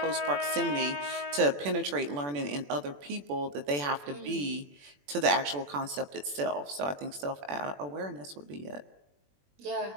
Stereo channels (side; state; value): left; late; 21 ms